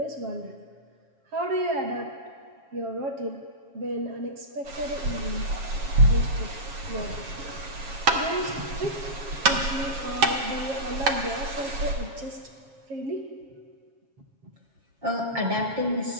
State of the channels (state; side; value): late; left; 7.3 ms